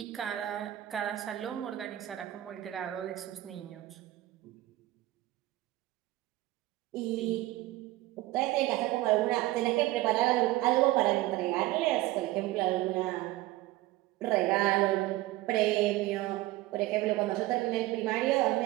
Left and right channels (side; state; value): left; quieter; 17.0 dB